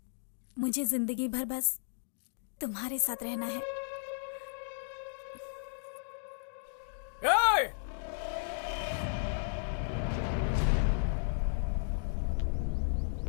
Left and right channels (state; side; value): silent; right; digital silence